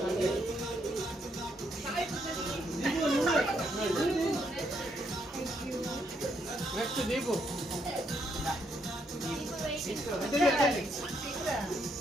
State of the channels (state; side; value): normal; both; correlation 0.75